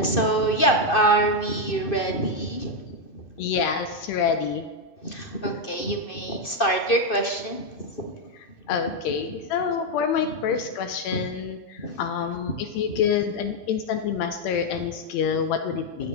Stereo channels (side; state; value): right; late; 2.6 ms